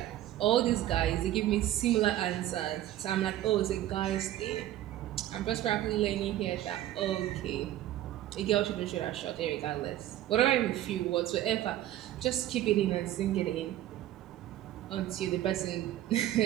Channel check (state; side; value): quieter; left; 13.4 dB